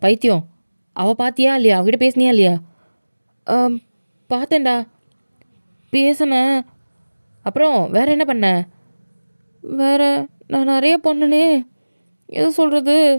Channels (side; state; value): both; inverted; correlation -1.00